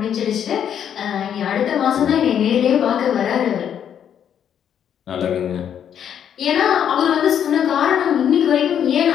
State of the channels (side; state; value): right; quieter; 9.0 dB